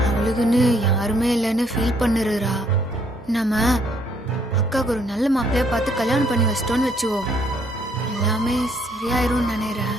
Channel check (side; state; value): both; normal; correlation 0.68